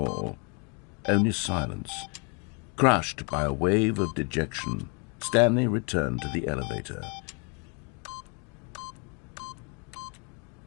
only silence. Crushed by a wave of dejection, Stanley returned to the elevator.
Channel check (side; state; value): right; quieter; 35.8 dB